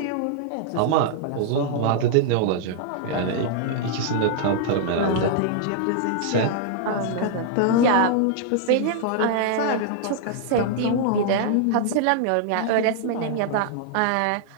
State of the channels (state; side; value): different; both; correlation -0.01